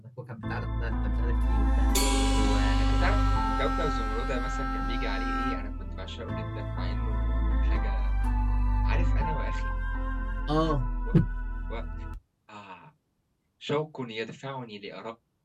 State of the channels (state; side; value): identical; both; correlation 1.00